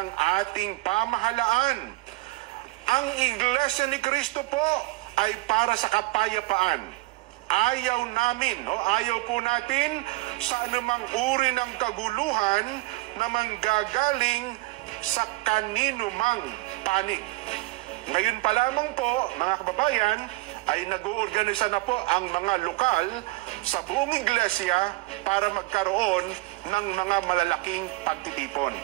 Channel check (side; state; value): left; quieter; 21.5 dB